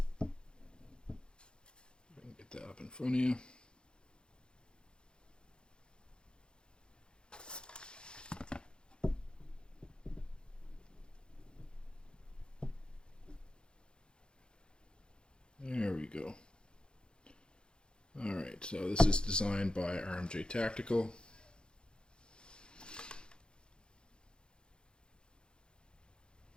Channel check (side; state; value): right; late; 0.050 ms